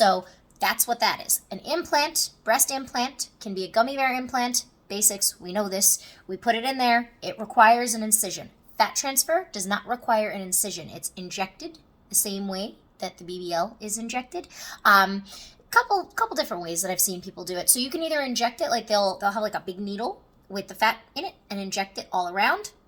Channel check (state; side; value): identical; both; correlation 1.00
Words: that's what that is. An implant, breast implant, can be a gummy bear implant. Basics, we know this. We put it in there. It requires an incision. Fat transfer does not require an incision. It's injected the same way that the BBL is injected. Couple different ways that I've seen people do it. So you can either inject it, like they'll have like a big needle with the fat in it and inject it all around,